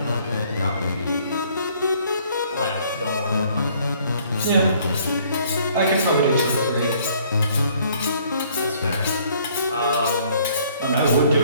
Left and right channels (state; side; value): inverted; both; correlation -0.61